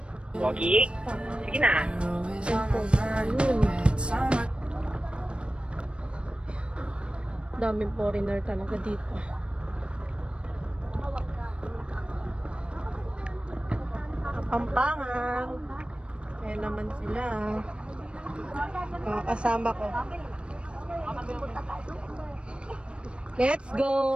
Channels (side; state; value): left; late; 0.058 ms